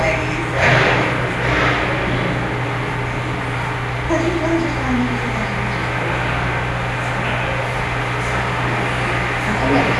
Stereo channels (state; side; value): identical; both; correlation 1.00